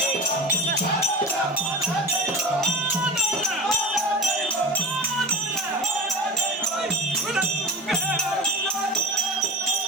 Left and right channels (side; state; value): both; normal; correlation 0.33